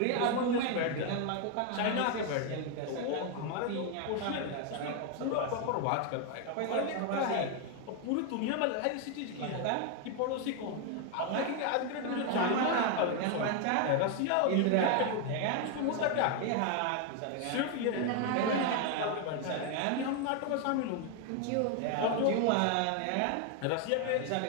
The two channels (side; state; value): both; different; correlation 0.01